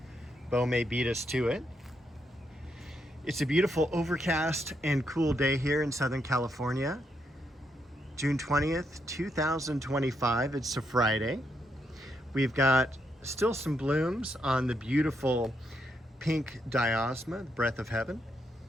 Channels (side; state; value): both; normal; correlation 0.79